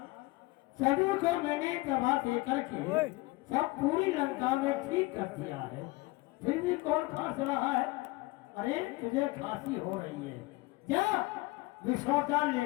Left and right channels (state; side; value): quieter; right; 21.8 dB